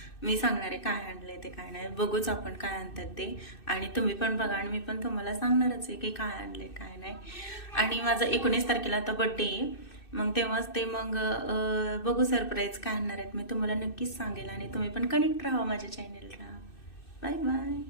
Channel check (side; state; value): right; late; 2.6 ms